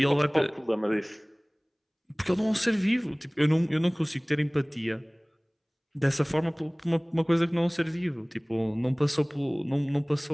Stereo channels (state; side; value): identical; both; correlation 1.00